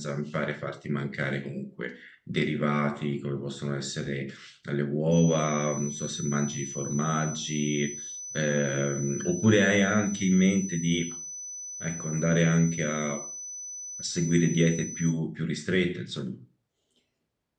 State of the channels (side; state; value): both; identical; correlation 1.00